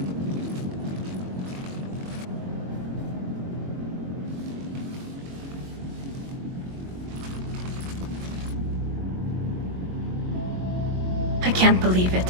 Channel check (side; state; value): left; late; 22 ms